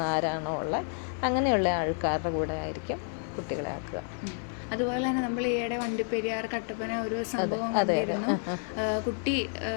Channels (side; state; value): right; silent; 58 dB below the other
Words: ആരാണോ ഉള്ളത് അങ്ങനെയുള്ള ആൾക്കാരുടെ കൂടെ ആയിരിക്കും കുട്ടികളെ ആക്കുക. അതുപോലെ തന്നെ നമ്മൾ ഈയിടെ വണ്ടിപ്പെരിയാർ കട്ടപ്പന ഒരു സംഭവം കണ്ടിരുന്നു. കുട്ടി